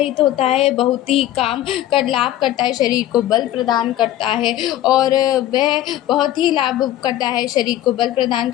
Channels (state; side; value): quieter; right; 13.4 dB